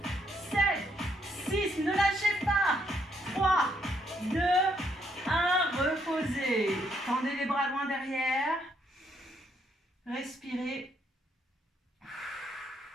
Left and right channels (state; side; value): normal; both; correlation 0.73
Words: 7, 6, ne lâchez pas. 3, 2, 1, reposez. Tendez les bras loin derrière. Respirez.